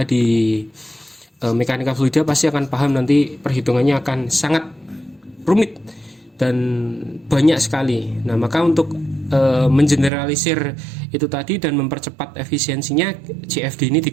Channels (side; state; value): left; drops out; at 10.1 s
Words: di mekanika fluida pasti akan paham nanti perhitungannya akan sangat rumit dan banyak sekali. Nah, maka untuk mengeneralisir itu tadi dan mempercepat efisiensinya, CFD ini